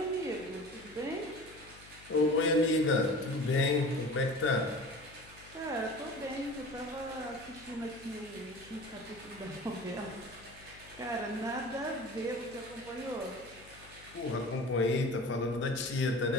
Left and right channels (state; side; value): noise; left; hum, 21 dB below the sound